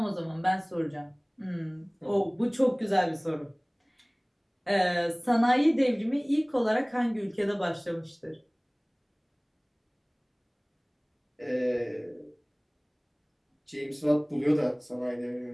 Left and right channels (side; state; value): both; identical; correlation 1.00